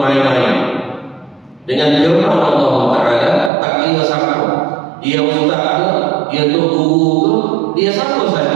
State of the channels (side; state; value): left; drops out; at 3.5 s